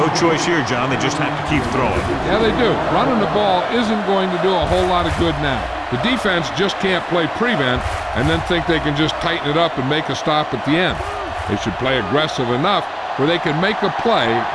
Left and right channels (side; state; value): both; identical; correlation 1.00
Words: choice here, John. They just have to keep throwing. Yeah, they do. Running the ball isn't going to do a whole lot of good now. The defense just can't play prevent and then think they can just tighten it up and make a stop at the end. They should play aggressive enough where they can make a play